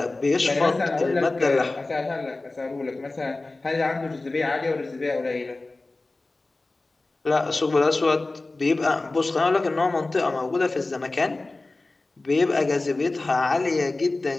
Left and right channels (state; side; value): quieter; right; 3.2 dB